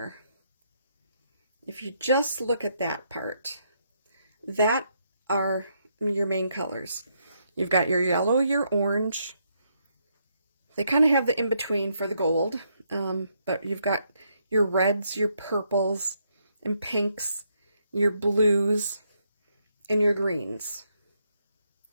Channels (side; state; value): both; inverted; correlation -0.76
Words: if you just look at that part, that are your main colors. You've got your yellow, your orange. They kind of have the in-between for the gold, but you've got your reds, your purples, and pinks, your blues, and your greens.